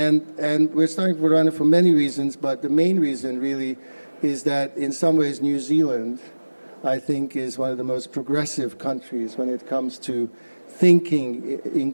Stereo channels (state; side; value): inverted; both; correlation -1.00